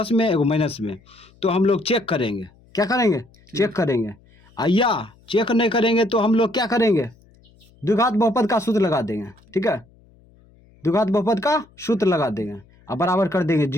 में एगो माइनस में। तो हम लोग चेक करेंगे, क्या करेंगे, चेक करेंगे। या चेक नहीं करेंगे तो हम लोग क्या करेंगे, द्विघात बहुपद का सूत्र लगा देंगे। ठीक है, द्विघात बहुपद का सूत्र लगा देंगे और बराबर कर देंगे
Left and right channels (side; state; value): left; noise; hum, 29 dB below the sound